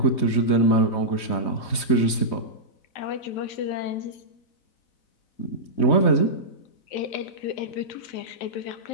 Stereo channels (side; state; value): right; late; 3.2 ms